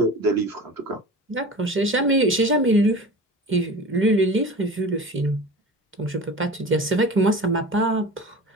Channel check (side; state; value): both; normal; correlation 0.35